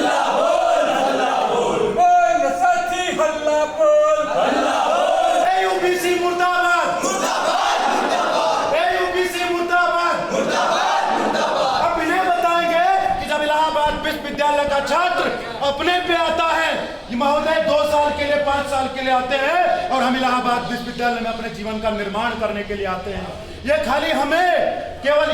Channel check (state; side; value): identical; both; correlation 1.00